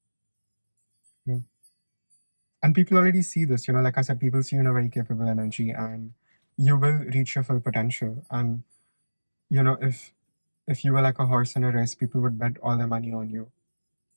Yeah. And people already see this, like I said, people see you in a very capable energy, and you will reach your full potential. And if you were like a horse in a race, people would bet all their money on you.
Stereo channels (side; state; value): both; inverted; correlation -1.00